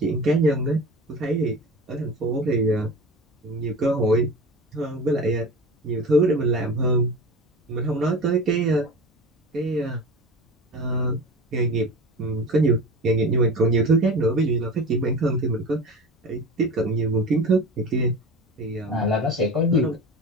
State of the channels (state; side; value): normal; both; correlation 0.33